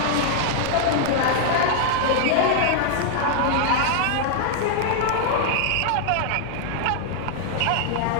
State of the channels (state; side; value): different; both; correlation -0.01